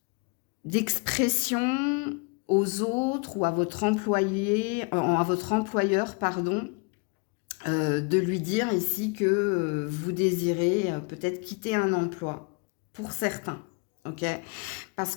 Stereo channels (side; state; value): right; quieter; 32.5 dB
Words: d'expression aux autres ou à votre employeur, pardon, de lui dire ici que vous désirez peut-être quitter un emploi. Pour certains, ok? Parce